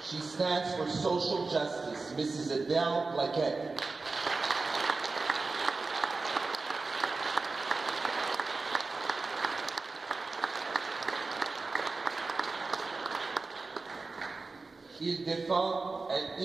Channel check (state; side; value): quieter; left; 3.8 dB